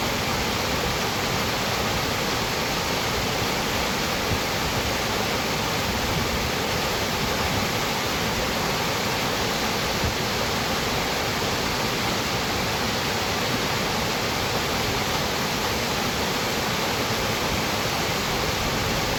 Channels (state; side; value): identical; both; correlation 1.00